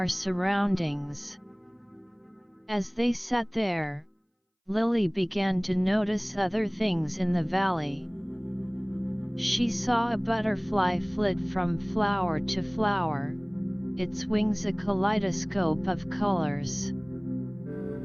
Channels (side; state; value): both; identical; correlation 1.00